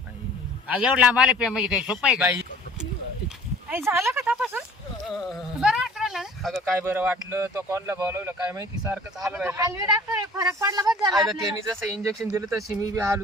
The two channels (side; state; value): both; normal; correlation 0.49